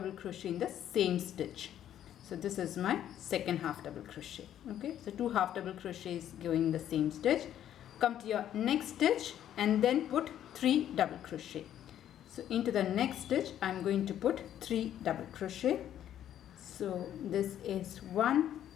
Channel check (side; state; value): right; quieter; 10.9 dB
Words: crochet in the same stitch. So this is my second half double crochet. Okay, so 2 half double crochets going in the same stitch. Come to your next stitch and then put 3 double crochet. So into the next stitch, I'm going to put 3 double crochet. So this is 1